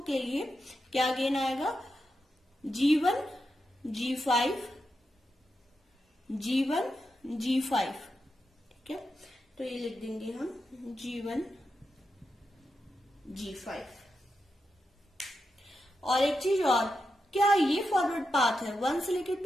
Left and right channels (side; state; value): both; normal; correlation 0.87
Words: के लिए क्या गेन आएगा, G1 G5 G1 G5, ठीक है। तो ये लिख देंगे हम G1 G5। और एक चीज और, क्या ये फॉरवर्ड पाथ है 1 से लेके